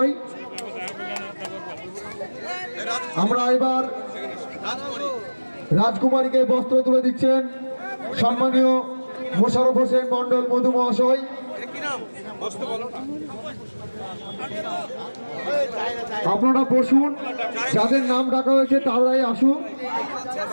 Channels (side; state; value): both; inverted; correlation -1.00